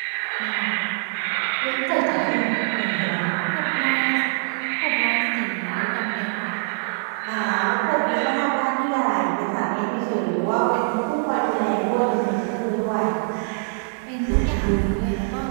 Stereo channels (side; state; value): left; silent; digital silence